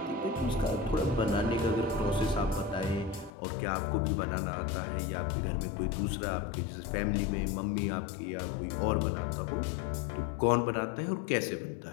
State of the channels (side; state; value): right; drops out; at 3.3 s